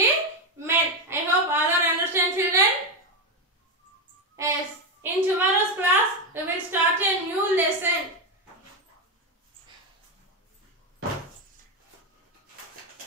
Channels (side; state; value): both; normal; correlation 0.09